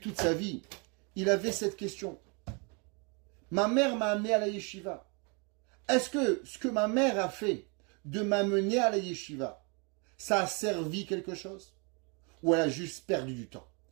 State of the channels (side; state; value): left; quieter; 33.3 dB